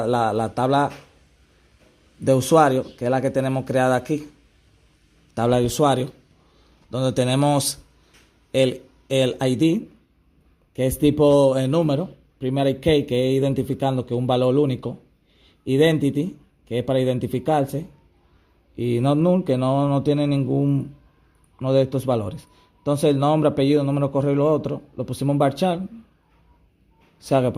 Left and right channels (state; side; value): identical; both; correlation 1.00